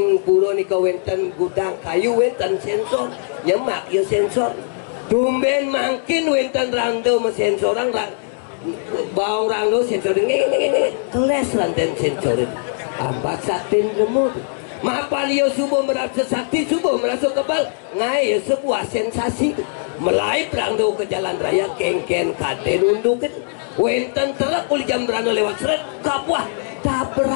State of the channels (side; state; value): right; silent; 66 dB below the other